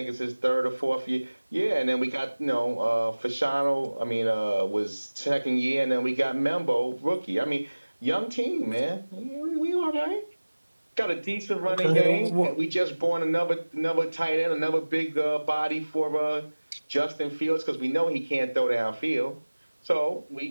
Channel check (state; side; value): inverted; both; correlation -1.00